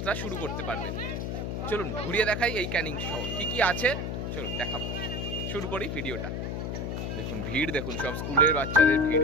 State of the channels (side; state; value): left; noise; hum, 3 dB below the sound